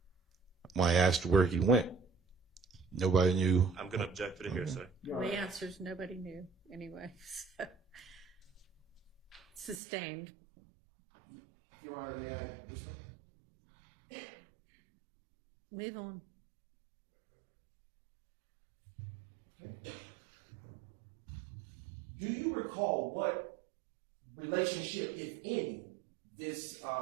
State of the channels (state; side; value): drops out; left; at 9.8 s